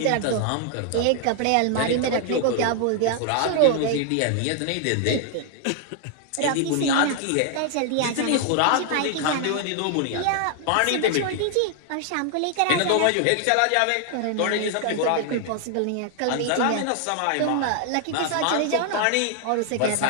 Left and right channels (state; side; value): different; both; correlation 0.00